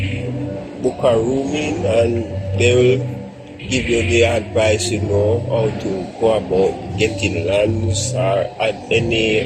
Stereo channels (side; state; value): both; identical; correlation 1.00